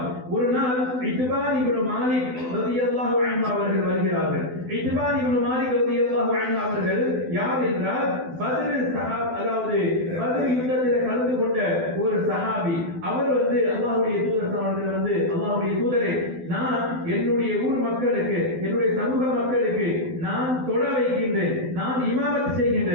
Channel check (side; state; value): left; late; 12 ms